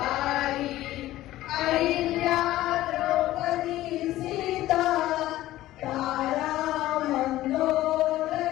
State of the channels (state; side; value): quieter; right; 15.4 dB